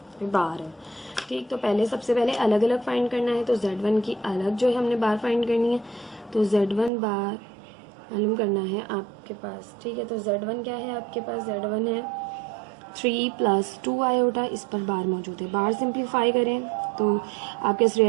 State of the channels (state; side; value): drops out; left; at 6.9 s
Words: बार है। ठीक, तो पहले सबसे पहले अलग अलग फाइंड करना है, तो Z1 की अलग जो है हमने बार फाइंड करनी है, तो Z1 बार मालूम करना है आपके पास। ठीक है, तो Z1 क्या है आपके पास, Z1 है 3 + 2 आयोटा, इस पर बार मौजूद है। बार सिंप्लीफाई करें तो आपके